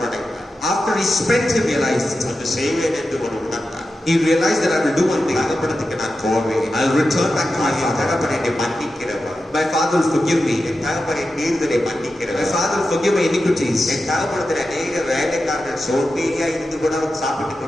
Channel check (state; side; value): normal; both; correlation 0.91